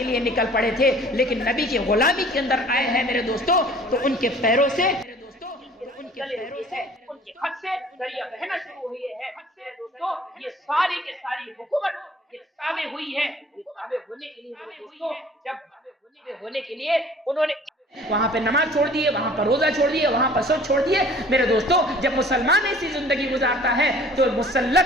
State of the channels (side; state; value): both; normal; correlation 0.50